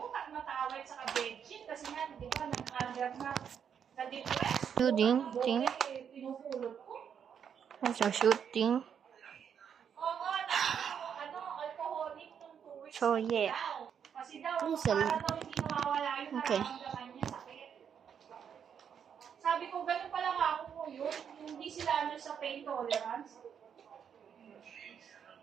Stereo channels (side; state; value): left; quieter; 7.8 dB